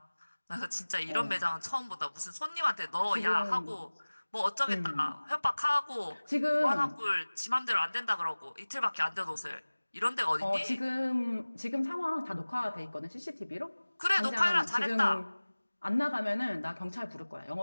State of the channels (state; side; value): inverted; both; correlation -1.00